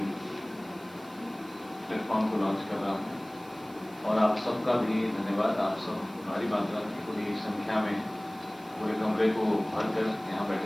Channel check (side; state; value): right; noise; hiss, 24 dB below the sound